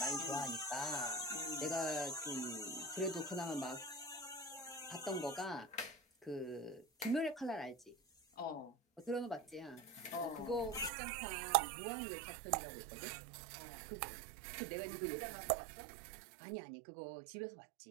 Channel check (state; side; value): drops out; left; at 10.9 s